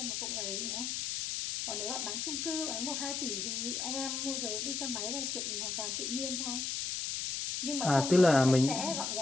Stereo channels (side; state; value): left; noise; hiss, 2 dB below the sound